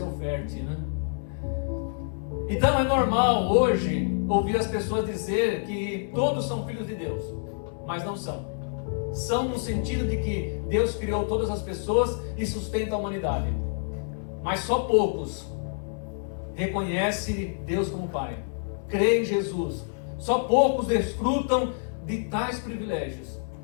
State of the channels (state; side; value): silent; right; digital silence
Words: oferte, né? Então é normal hoje ouvir as pessoas dizer que todos são filhos de Deus, mas não são. São no sentido de que Deus criou todas as pessoas e sustenta a humanidade, mas só poucos reconhecem Deus como Pai, creem em Jesus. Só poucos desfrutam de tais privilégios,